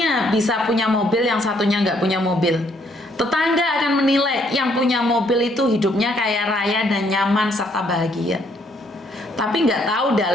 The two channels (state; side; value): normal; both; correlation 0.68